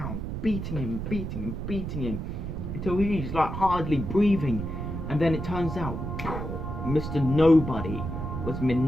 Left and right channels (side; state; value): right; noise; rumble, 5 dB below the sound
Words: Beating him. Until he's like hardly breathing. And then it turns out, Mr. Nobody was